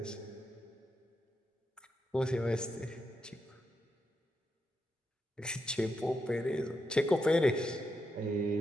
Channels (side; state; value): both; normal; correlation 0.84